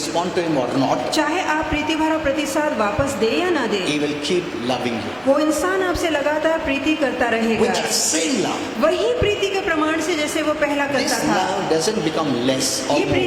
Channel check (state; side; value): identical; both; correlation 1.00